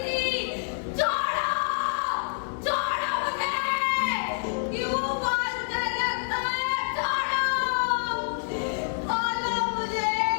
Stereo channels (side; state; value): right; silent; digital silence